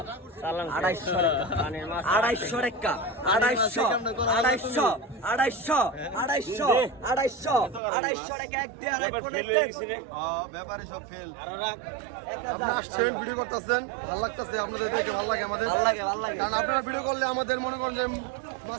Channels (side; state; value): left; drops out; at 7.8 s